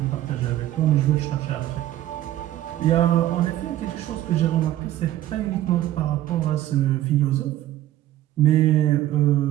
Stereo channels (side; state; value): left; quieter; 13.7 dB